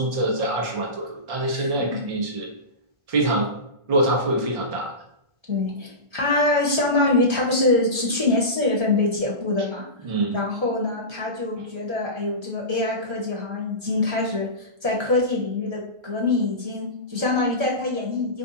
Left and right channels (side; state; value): left; late; 1.3 ms